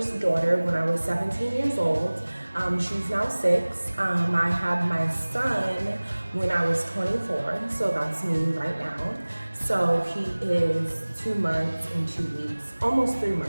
daughter when I was 17 years old. She's now 6. I had my son when I was 24, so that's me right now. So he is 2 months and 2 weeks, almost 3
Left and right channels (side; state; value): both; inverted; correlation -1.00